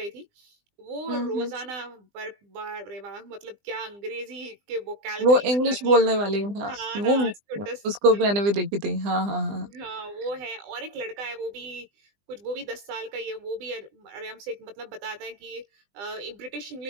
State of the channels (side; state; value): left; late; 20 ms